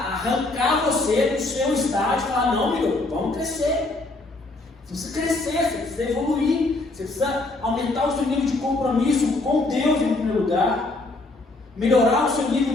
arrancar você do seu estágio e falar, não, meu, vamos crescer. Você precisa crescer, você precisa evoluir, você precisa aumentar o seu nível de compromisso com Deus em primeiro lugar, melhorar o seu nível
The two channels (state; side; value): quieter; right; 3.0 dB